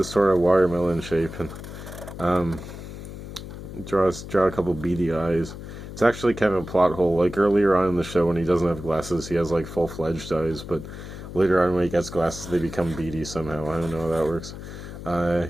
sort of watermelon shape, and um, draw a couple beady eyes. It's actually kind of a plot hole. Like earlier on in the show, when he doesn't have glasses, he has like full-fledged eyes, but later on, when he gets glasses, they become beady somehow. I don't know how that works.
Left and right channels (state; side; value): noise; left; hum, 11 dB below the sound